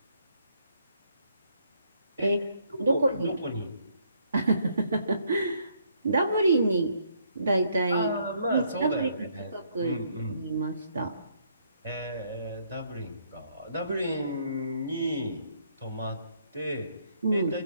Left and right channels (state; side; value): inverted; both; correlation -0.70